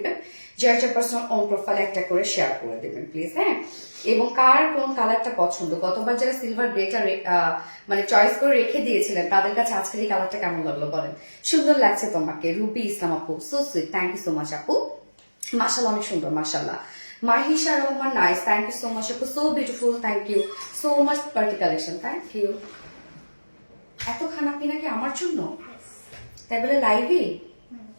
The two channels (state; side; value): inverted; both; correlation -1.00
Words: যার যার পার্সোনাল অন প্রোফাইলে একটা করে শেয়ার করে দেবেন প্লিজ। হ্যাঁ, এবং কার কোন কালারটা পছন্দ, গতবার যারা সিলভার গ্রেটা মানে চয়েস করে রেখে দিয়েছিলেন তাদের কাছে আজকের এই কালারটা কেমন লাগলো বলেন? সুন্দর লাগছে তোমাকে রুবি ইসলাম আপু, so sweet, thank you so much আপু। মাশাআল্লাহ, অনেক সুন্দর মাশাআল্লাহ। Mahisha Rahman, nice, thank you so much আপু, so beautiful, thank you so much. Party collection, thank you. এত খানা পিনা কি আমার জন্য? তাই বলে লাইভে